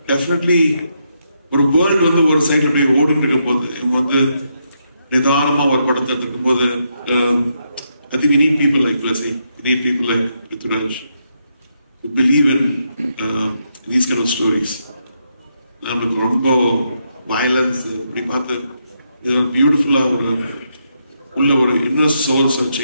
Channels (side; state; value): both; inverted; correlation -0.80